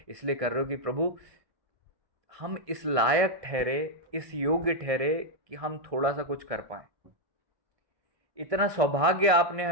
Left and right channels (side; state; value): left; late; 1.6 ms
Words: इसलिए कर रहे हो कि प्रभु हम इस लायक ठहरे, इस योग्य ठहरे कि हम थोड़ा सा कुछ कर पाए। इतना सौभाग्य आपने